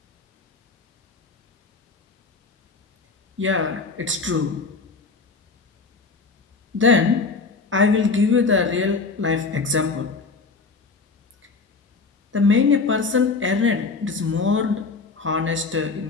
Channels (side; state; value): right; quieter; 4.2 dB